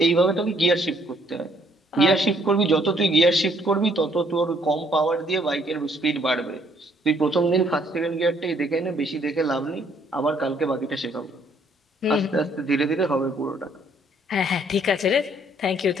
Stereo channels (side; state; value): both; normal; correlation 0.65